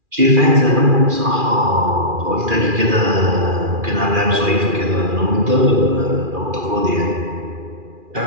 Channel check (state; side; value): late; left; 2.4 ms